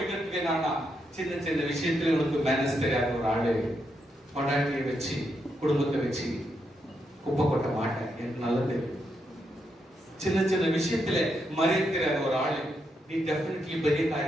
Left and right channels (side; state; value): both; normal; correlation 0.81